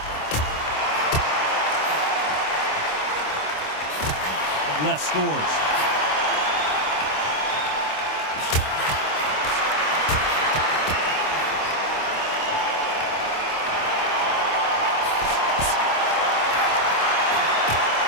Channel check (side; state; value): right; late; 27 ms